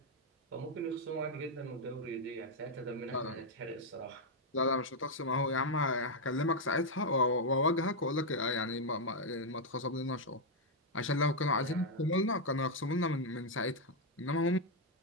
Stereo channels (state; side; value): normal; both; correlation -0.01